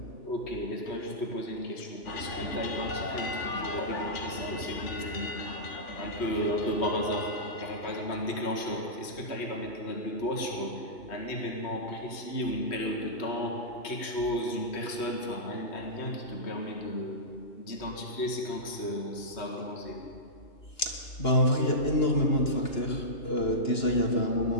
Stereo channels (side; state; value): right; late; 2.9 ms